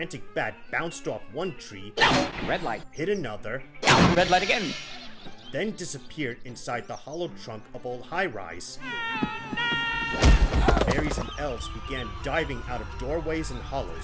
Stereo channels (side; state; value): both; identical; correlation 1.00